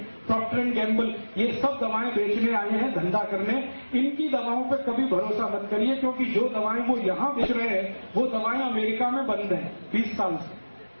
प्रॉक्टर एंड गैम्बल, ये सब दवाएं बेचने आए हैं, धंधा करने। इनकी दवाओं पर कभी भरोसा मत करिए, क्योंकि जो दवाएं वो यहां बेच रहे हैं वो दवाएं अमेरिका में बंद हैं 20 साल से,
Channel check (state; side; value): inverted; both; correlation -1.00